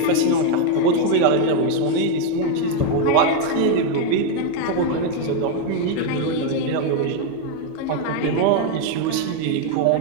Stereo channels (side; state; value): both; different; correlation 0.01